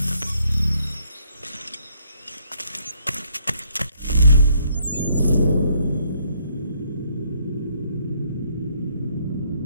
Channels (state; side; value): inverted; both; correlation -0.68